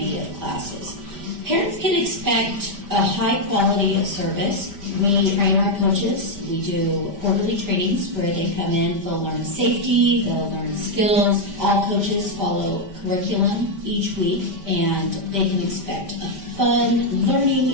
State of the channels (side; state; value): left; late; 5.1 ms